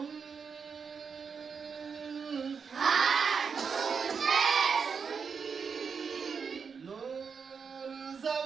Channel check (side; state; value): left; quieter; 5.9 dB